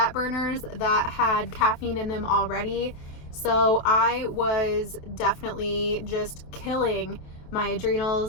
burners that had caffeine in them already. So I was definitely just killing my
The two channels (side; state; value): right; late; 27 ms